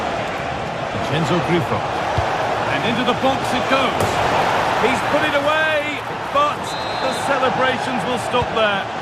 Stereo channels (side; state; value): both; identical; correlation 1.00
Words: Vincenzo Grifo, and into the box it goes. He's put it away, but the celebrations will stop there.